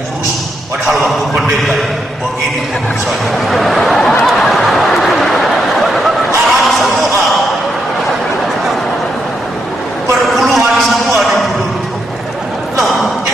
kurus. Padahal waktu pendeta begini kurusannya. Haram semua, perpuluhan semua di mulut. Loh,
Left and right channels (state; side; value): normal; both; correlation 0.80